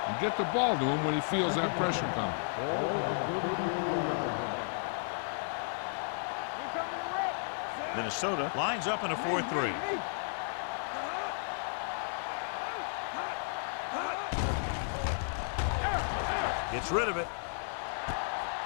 and get the ball to him when he feels that pressure coming. Ball on the 34-yard line. Here I go. We're coming to wreck. Minnesota lines up in a 4-3. Gets rid of it.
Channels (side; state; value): right; silent; digital silence